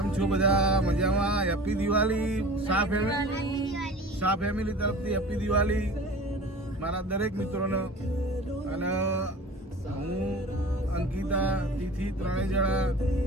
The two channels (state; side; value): normal; both; correlation 0.40